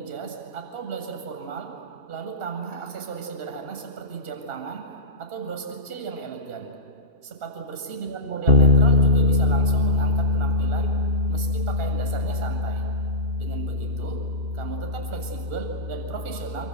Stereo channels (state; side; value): late; left; 2.8 ms